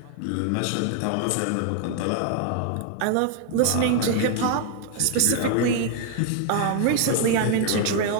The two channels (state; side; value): different; both; correlation 0.00